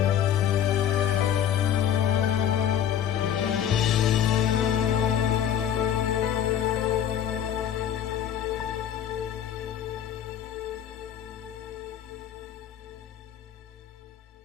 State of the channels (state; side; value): quieter; right; 9.8 dB